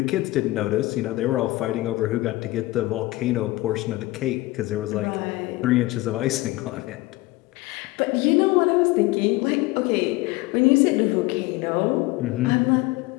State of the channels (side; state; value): right; quieter; 19.8 dB